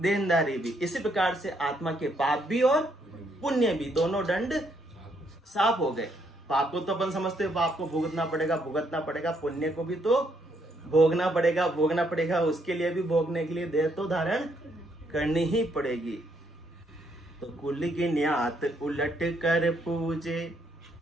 देनदारी भी। इसी प्रकार से आत्मा के पाप भी और पुण्य भी, दोनों दंड साफ हो गए। पाप को तो अपन समझते हैं, पाप को भुगतना पड़ेगा, पुण्य को भी तो भोगना पड़ेगा, भोगना पड़ेगा, उसके लिए भी भोगने के लिए देह तो धारण करनी ही पड़ेगी। तो कुल की न्यात उलट कर पूजे,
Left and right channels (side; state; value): both; normal; correlation 0.73